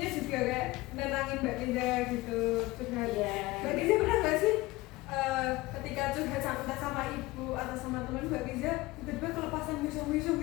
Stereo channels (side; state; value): right; quieter; 20.1 dB